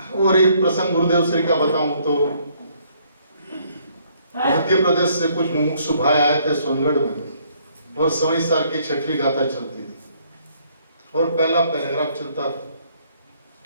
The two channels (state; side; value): inverted; both; correlation -0.66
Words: और एक प्रसंग गुरुदेव श्री का बताऊं तो मध्य प्रदेश से कुछ मुमुक्षु भाई आए थे सोनगढ़ में, और सवई सार की 6वीं गाथा चलती थी और पहला पैराग्राफ चलता था।